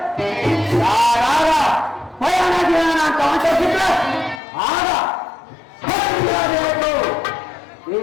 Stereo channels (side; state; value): right; drops out; at 4.4 s